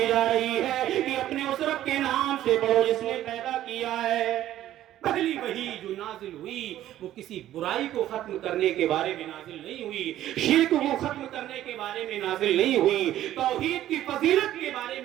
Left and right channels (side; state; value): left; quieter; 13.0 dB